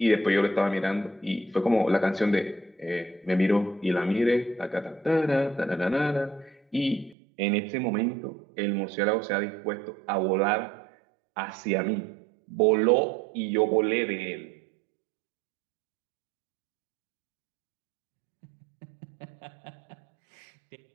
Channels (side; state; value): left; drops out; at 7.2 s